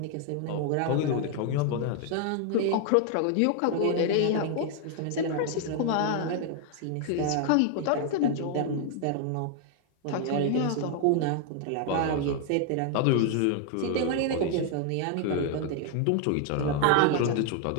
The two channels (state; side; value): different; both; correlation 0.00